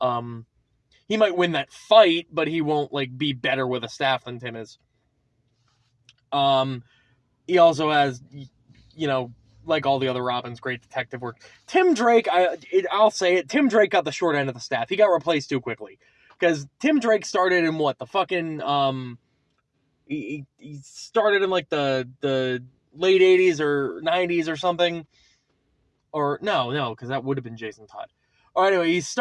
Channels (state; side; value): identical; both; correlation 1.00